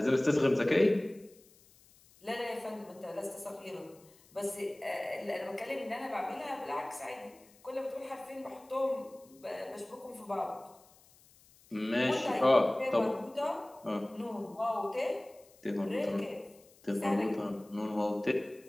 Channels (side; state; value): left; noise; hiss, 27 dB below the sound